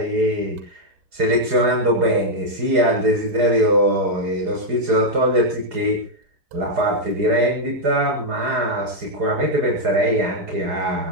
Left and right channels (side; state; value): left; late; 4.8 ms